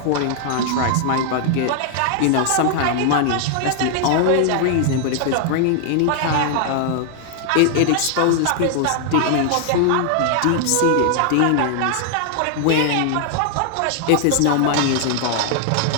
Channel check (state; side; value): different; both; correlation 0.00